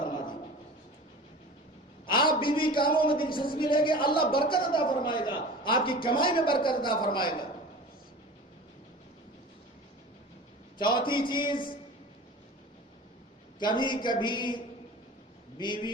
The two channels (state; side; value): normal; both; correlation 0.37